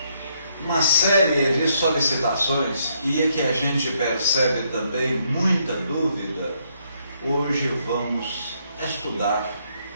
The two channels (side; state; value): both; inverted; correlation -0.74